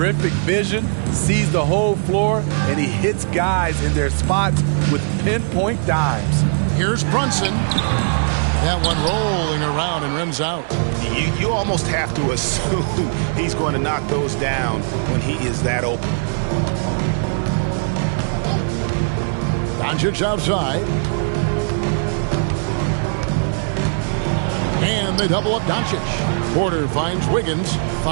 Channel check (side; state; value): left; silent; 66 dB below the other